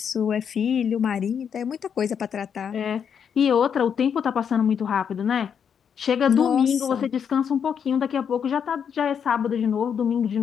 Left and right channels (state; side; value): quieter; right; 7.6 dB